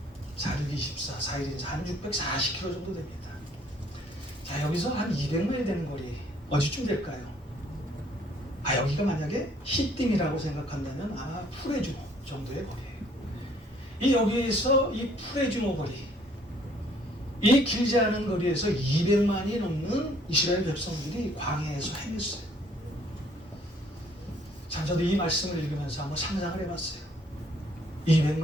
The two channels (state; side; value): normal; both; correlation 0.61